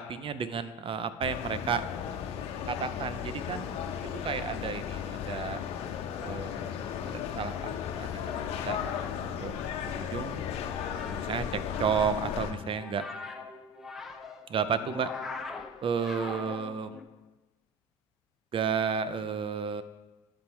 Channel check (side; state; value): both; normal; correlation 0.28